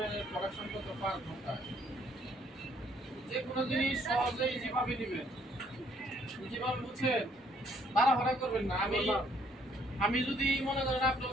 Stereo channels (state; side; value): normal; both; correlation 0.66